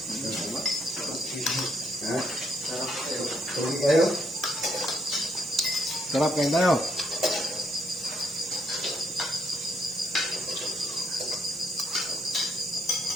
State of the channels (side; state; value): both; normal; correlation 0.73